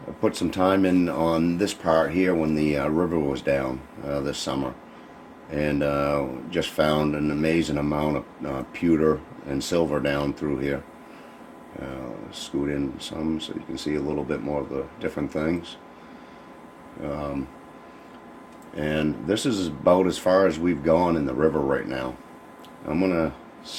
I put some time in on this part here when the river was down this summer, and just found an amazing amount of pewter and silver down through here. Scoot in some so you can see a little bit more of the different things. And this is about as far as we've gone in the river right now. I'm gonna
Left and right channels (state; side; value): identical; both; correlation 1.00